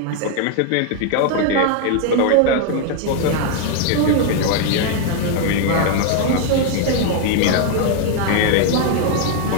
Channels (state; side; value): different; both; correlation 0.00